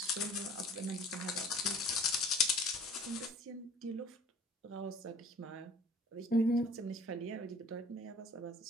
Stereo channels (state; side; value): normal; both; correlation 0.49